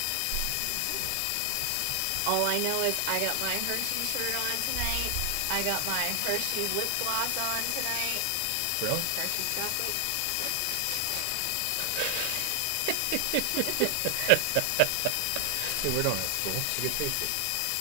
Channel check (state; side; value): different; both; correlation 0.00